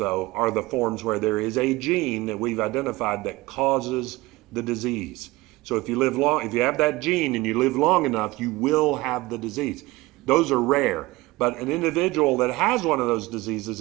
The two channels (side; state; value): left; quieter; 20.1 dB